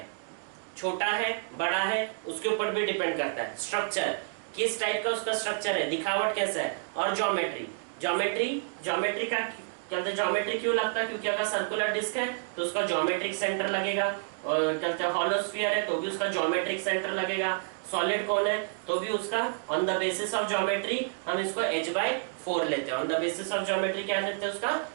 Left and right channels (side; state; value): left; silent; digital silence